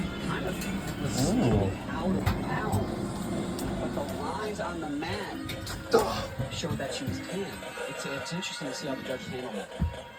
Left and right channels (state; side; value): identical; both; correlation 1.00